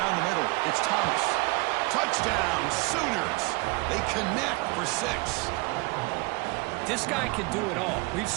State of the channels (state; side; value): quieter; left; 26.9 dB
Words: the middle. It's Thomas. Touchdown, Sooners. They connect for 6. This guy can do it all. We've